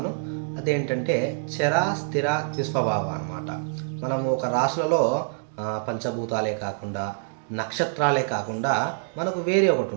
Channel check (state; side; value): silent; left; digital silence